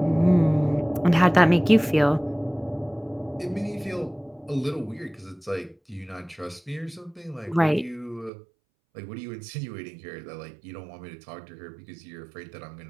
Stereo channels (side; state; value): left; drops out; at 8.3 s